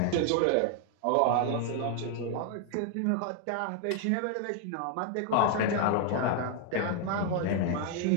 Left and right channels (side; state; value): both; different; correlation 0.00